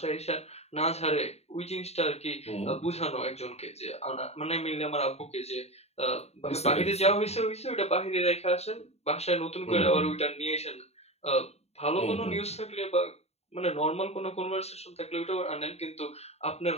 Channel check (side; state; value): right; late; 0.31 ms